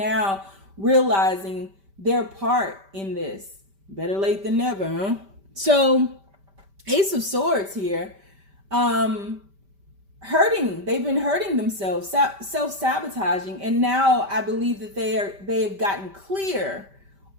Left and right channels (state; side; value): late; left; 5.1 ms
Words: realizing their part in this. Better late than never, huh? So Ace of Swords here, they've been hurting themselves, self-sabotaging, and now I believe that they've gotten clear